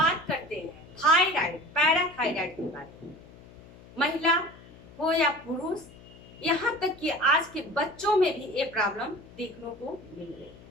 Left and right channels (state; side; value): noise; left; hum, 21 dB below the sound